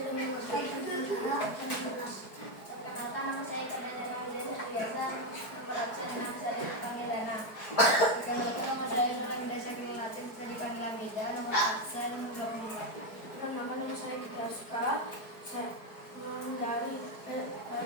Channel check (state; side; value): late; right; 4.6 ms